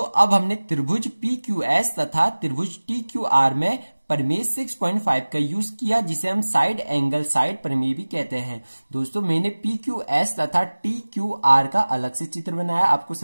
अब हमने त्रिभुज PQS तथा त्रिभुज TQR में प्रमेय 6.5 का यूज किया, जिसे हम साइड एंगल साइड प्रमेय भी कहते हैं। दोस्तों मैंने PQS तथा TQR का अलग से चित्र बनाया आपको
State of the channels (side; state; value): both; inverted; correlation -1.00